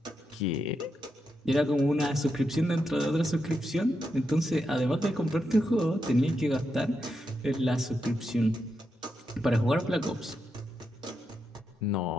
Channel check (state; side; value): normal; both; correlation 0.85